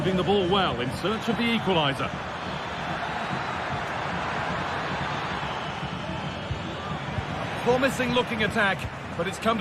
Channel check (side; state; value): both; identical; correlation 1.00